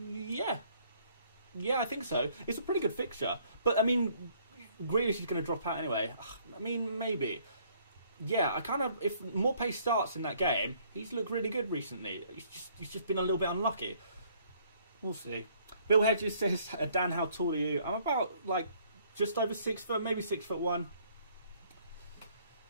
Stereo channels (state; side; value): inverted; both; correlation -0.63